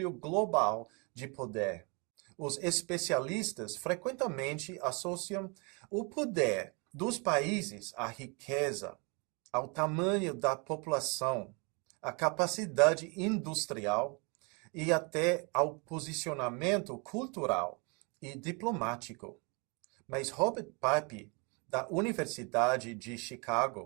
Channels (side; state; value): left; quieter; 31.9 dB